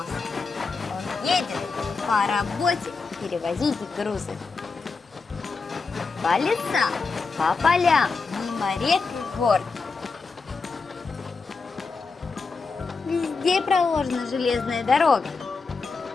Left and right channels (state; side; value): quieter; right; 4.5 dB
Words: Он едет по работе перевозить грузы. По лесам, по полям, мимо рек и гор. Везде проложена железная дорога.